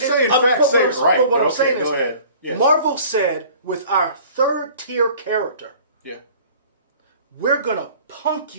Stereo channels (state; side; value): inverted; both; correlation -0.48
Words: But facts, say what it right. But what I'm Okay, saying go is, ahead. Yes. Marvel said, with our third tier character, Yeah. we're going to punk